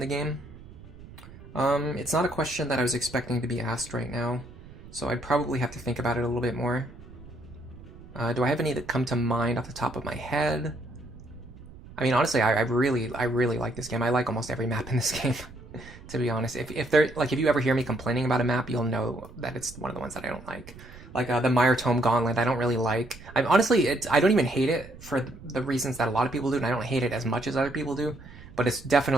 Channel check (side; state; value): right; noise; rumble, 18 dB below the sound